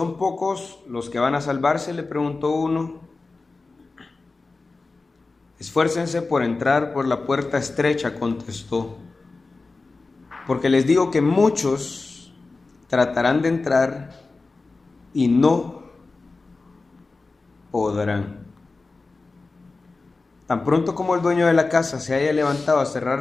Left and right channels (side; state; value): right; quieter; 3.7 dB